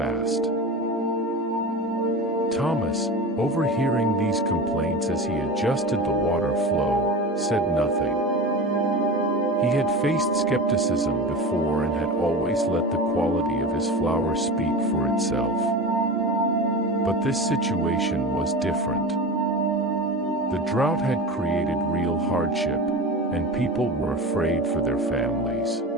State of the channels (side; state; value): both; normal; correlation 0.29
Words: Thomas, overhearing these complaints as he adjusted the water flow, said nothing. He had faced skepticism before and had always let the quality of his flower speak for itself. But this situation was different. The drought had created real hardship, and people were afraid for their families.